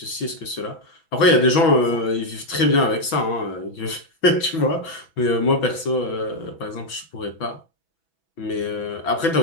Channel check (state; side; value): late; right; 6.1 ms